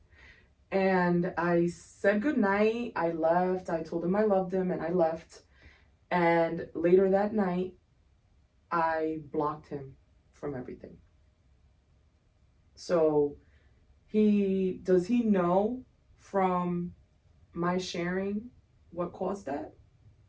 And I said goodnight. I left. I told him I loved him and I left. And later that night, I blocked him from everything. So does he know from my sharing what caused that?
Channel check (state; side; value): identical; both; correlation 1.00